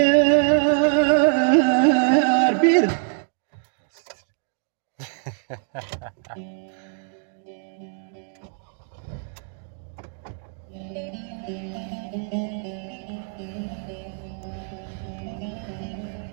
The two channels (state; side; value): silent; left; 62 dB below the other